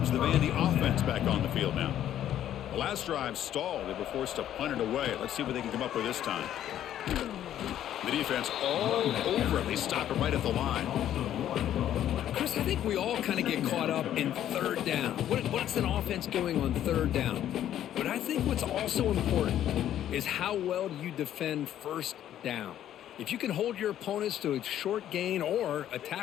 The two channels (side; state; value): right; quieter; 11.3 dB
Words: the Vandy offense back on the field now. The last drive stalled. They were forced to punt it away. Let's see what they can come up with this time. The defense all over it. They stop it right at the line. Chris, I think we all kind of get caught up in 3rd down. What's an offense doing on 3rd down? But I think what's also important is how well do you defend 1st down. If you can hold your opponents to a short gain or a